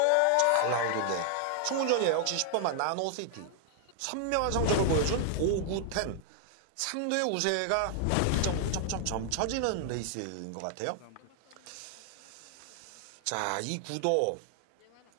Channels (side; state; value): both; different; correlation 0.00